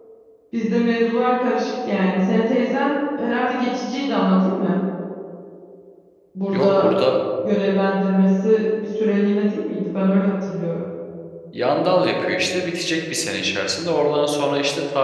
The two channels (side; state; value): both; identical; correlation 1.00